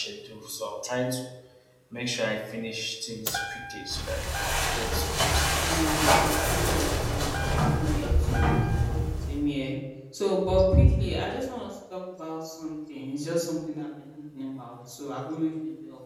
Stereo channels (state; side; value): identical; both; correlation 1.00